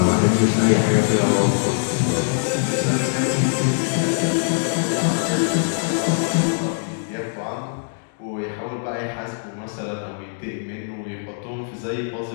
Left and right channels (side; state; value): right; silent; digital silence